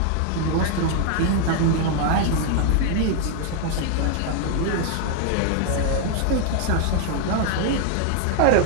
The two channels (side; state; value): both; different; correlation 0.00